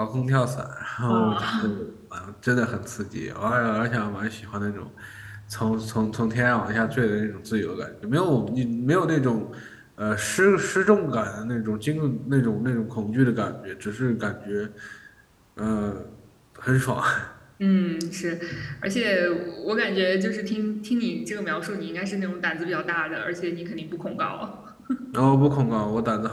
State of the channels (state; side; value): identical; both; correlation 1.00